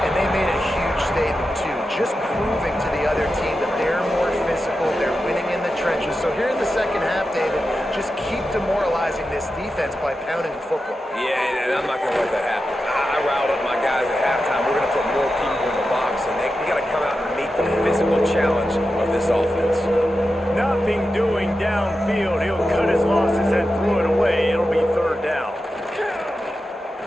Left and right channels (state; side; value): normal; both; correlation 0.90